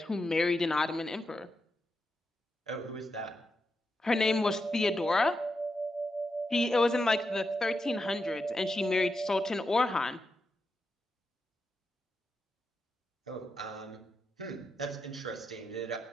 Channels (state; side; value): normal; both; correlation 0.87